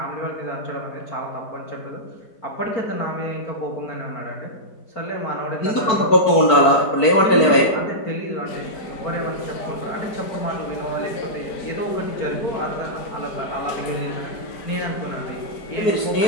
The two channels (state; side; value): late; right; 4.5 ms